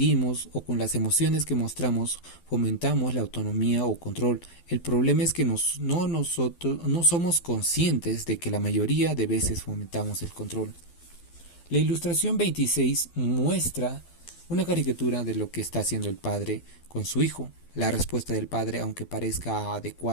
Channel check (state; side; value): late; right; 12 ms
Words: o con las emociones que mostramos fomentamos la autonomía o control. El problema es que nosotros no somos conscientes de que la mayoría de veces fomentamos el control. La ilustración 26 muestra una caricatura de lo que está haciendo el padre con su hijo. La respuesta del padre, aunque parezca